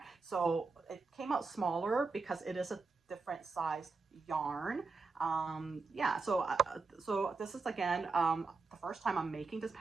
So it came out smaller because it is a different sized yarn. Yeah, so this is again the first time I'm making this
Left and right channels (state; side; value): quieter; left; 4.3 dB